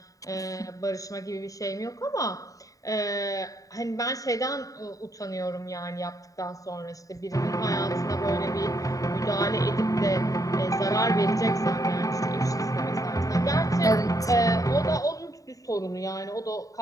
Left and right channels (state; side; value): late; right; 0.16 ms